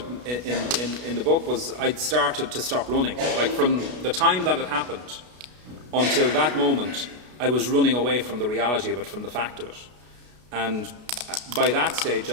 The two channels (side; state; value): left; late; 33 ms